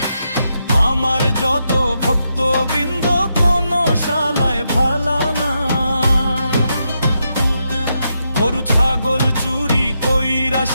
আমার যত ভক্তবৃন্দ কোন শালায় ভালা না। গরু ছাগল চুরি কইরা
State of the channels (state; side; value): inverted; both; correlation -0.83